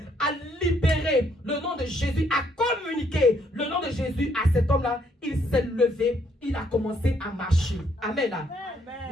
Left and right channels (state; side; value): normal; both; correlation 0.70